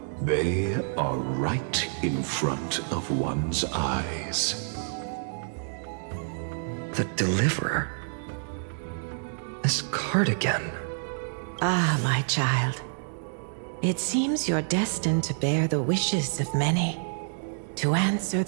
they are right in front of one's eyes. The Deliverer? This card again. Ah, my child. It seems you're destined to bear the wishes of many, to answer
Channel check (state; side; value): silent; left; digital silence